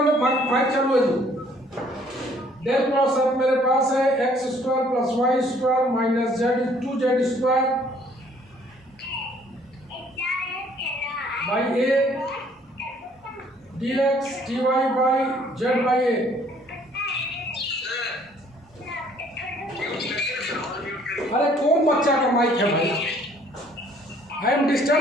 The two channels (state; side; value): normal; both; correlation 0.60